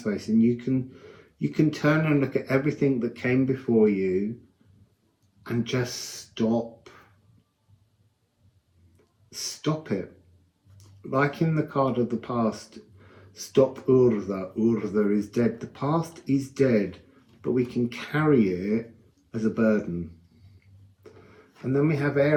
face, and you can turn and look at everything that came before you and just stop it. Like in the card of the past, stop Urza. Urza is dead. The past is dead, but we can carry it as a burden. And then we have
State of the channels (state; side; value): identical; both; correlation 1.00